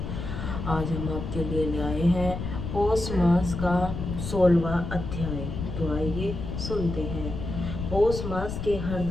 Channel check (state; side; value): noise; left; rumble, 5 dB below the sound